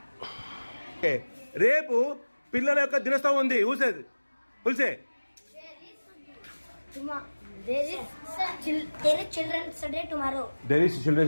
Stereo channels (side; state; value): both; inverted; correlation -1.00